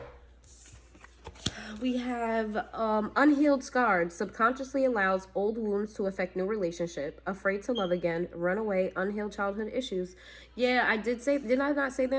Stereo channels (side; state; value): both; identical; correlation 1.00